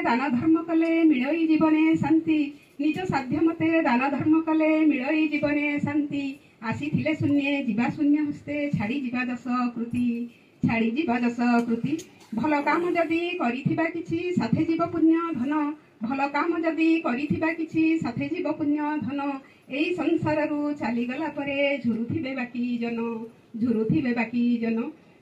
दान धर्म कले मिलई जीवने शांति निज साध्य मते दान धर्म कले मिलई जीवने शांति आसीथिले शून्य जीवा शून्य हस्ते छाड़ी जीवा दश कृति भल काम जदि करिथिबा किछि साथे जीव पुण्य धन भल काम जदि करिथिबा किछि साथे जीव पुण्य धन एई संसाररू चलीगला परे झुरुथिबे बाकी जन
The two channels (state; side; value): identical; both; correlation 1.00